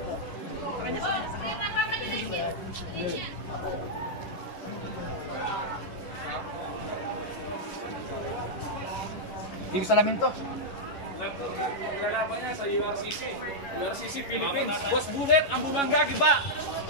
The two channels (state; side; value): late; right; 11 ms